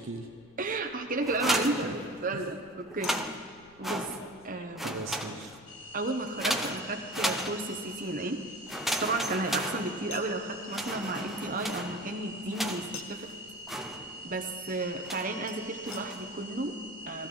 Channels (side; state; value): left; noise; rumble, 26 dB below the sound